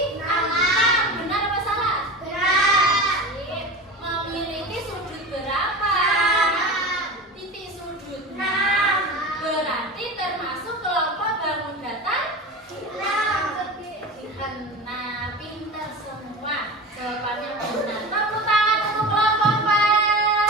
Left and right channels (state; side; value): normal; both; correlation 0.30